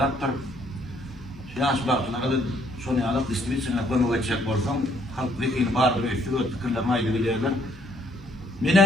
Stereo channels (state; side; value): normal; both; correlation 0.66